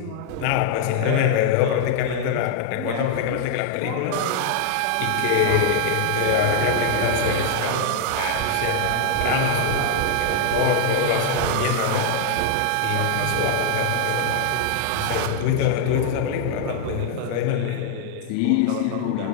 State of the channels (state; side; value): different; both; correlation 0.00